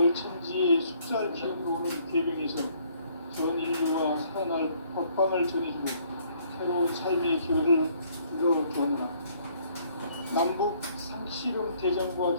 천지의 숫살 기운으로 오는 계명에서 전 인류와 살아날 법방을 전해주고 새로운 삶의 기회를 이뤄주었노라. 남북 상씨름 대전과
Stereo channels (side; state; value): both; inverted; correlation -0.63